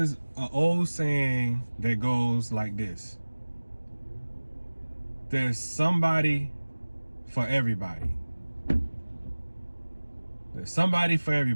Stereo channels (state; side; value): inverted; both; correlation -1.00